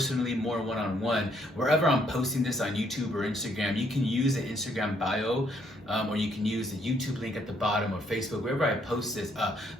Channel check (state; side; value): normal; both; correlation 0.70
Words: more one-on-one, wherever I'm posting this on YouTube or Instagram, you can use the Instagram bio, or you can use the YouTube link at the bottom, or Facebook, wherever I post this.